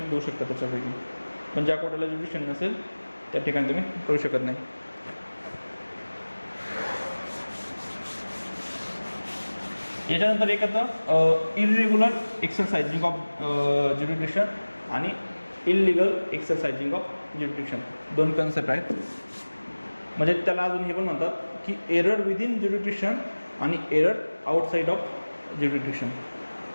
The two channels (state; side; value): inverted; both; correlation -1.00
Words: देऊ शकता त्याच्यापैकी, पण ज्या कोर्टाला ज्युरिडिक्शन नसेल त्या ठिकाणी तुम्ही करू शकत नाही. याच्यानंतर एक येतं इरेग्युलर एक्सरसाइजिंग ऑफ ज्युरिडिक्शन आणि illegal exercising of jurisdiction, 2 concept आहेत. म्हणजे त्याला अजून हे पण म्हणतात की एरर विदिन ज्युरिडिक्शन आणि एरर आउटसाईड ऑफ ज्युरिडिक्शन.